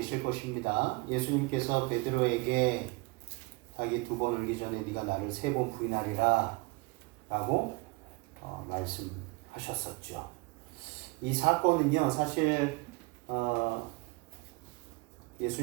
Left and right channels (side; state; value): left; quieter; 25.9 dB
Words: 것입니다. 예수님께서 베드로에게 자기 2번 울기 전에 네가 나를 3번 부인하리라 라고 말씀하셨었죠. 이 사건은요, 사실